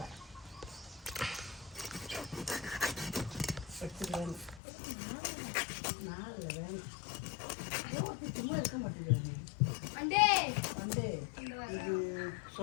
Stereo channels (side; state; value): right; drops out; at 4.6 s